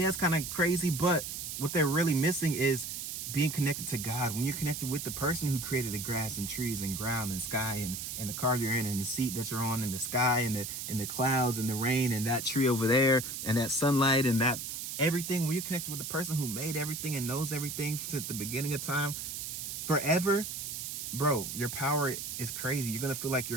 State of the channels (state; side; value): noise; right; hiss, 6 dB below the sound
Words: it's kind of crazy, but what they're really missing is being connected to God. When you're connected with the person who created the grass and trees and ground and sky and the car you're in and the seat that you're on and the sky and the clouds and the rain and that tree over there and that sunlight and that everything, when you're connected with the person who made everything and knows everything since the beginning of time forever, bro, your power is crazy. You're gonna feel like